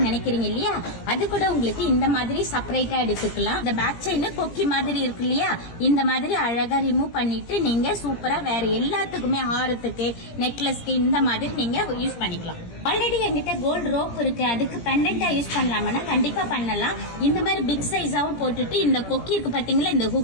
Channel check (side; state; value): right; late; 17 ms